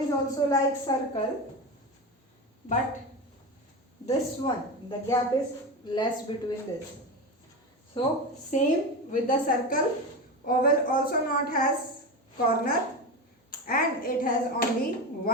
also like circle, but this one, the gap is less between this. So same with the circle, oval also not has corner and it has only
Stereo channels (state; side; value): normal; both; correlation 0.21